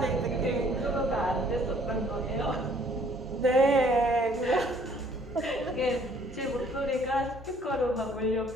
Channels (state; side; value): normal; both; correlation 0.60